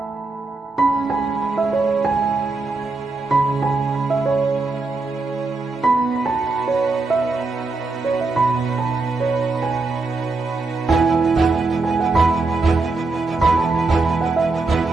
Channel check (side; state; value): left; quieter; 3.5 dB